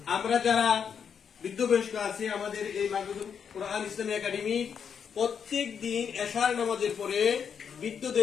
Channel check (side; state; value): right; quieter; 7.2 dB